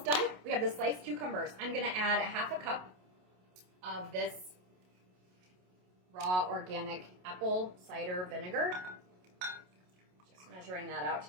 done. We have the sliced cucumbers. I'm going to add a half a cup of this raw organic apple cider vinegar. Just measuring that out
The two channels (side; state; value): left; late; 27 ms